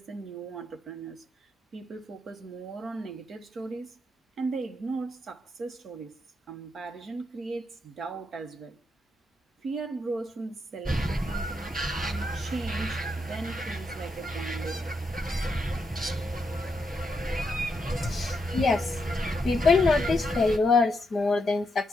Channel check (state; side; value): normal; both; correlation 0.81